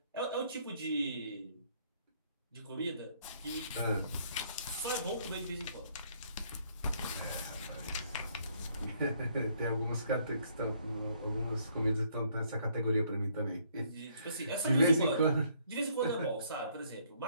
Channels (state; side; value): inverted; both; correlation -0.66